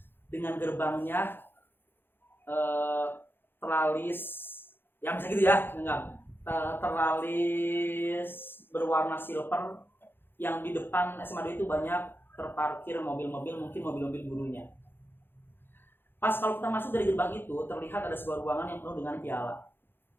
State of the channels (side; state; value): right; late; 0.10 ms